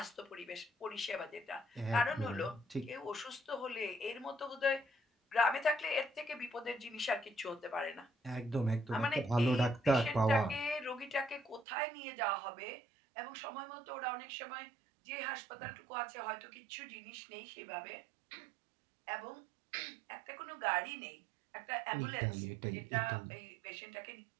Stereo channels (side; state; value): left; drops out; at 11.7 s